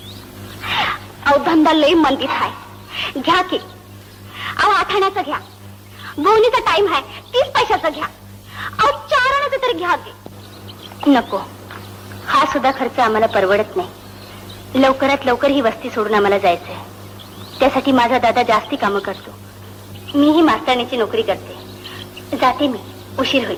अहो, धंदा लई मंदीत हाय, घ्या की. अहो, 8 आण्याचा घ्या. बोनीचा टाइम हाय, 30 पैशाचा घ्या. अहो, 4 आण्याचा तरी घ्या की. नको, हा सुद्धा खर्च आम्हाला परवडत नाही. लवकरात लवकर ही वस्ती सोडून आम्हाला जायचंय. त्यासाठी माझा दादा जास्ती कामं करतो. मीही मास्तराणीची नोकरी करते. जाते मी, उशीर होईल.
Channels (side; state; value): both; identical; correlation 1.00